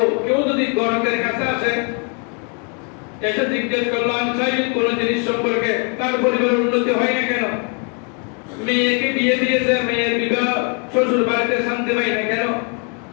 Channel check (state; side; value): quieter; right; 38.2 dB